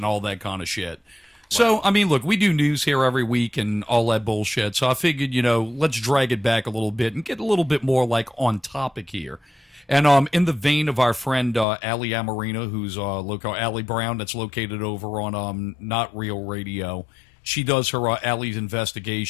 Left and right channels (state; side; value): drops out; right; at 11.7 s